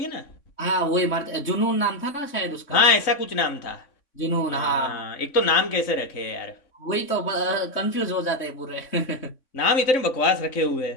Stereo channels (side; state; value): right; late; 3.6 ms